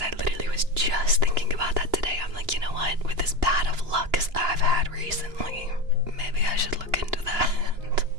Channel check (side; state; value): left; late; 2.9 ms